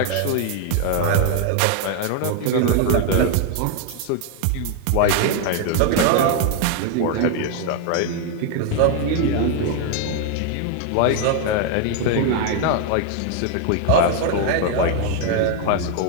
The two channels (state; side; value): different; both; correlation 0.00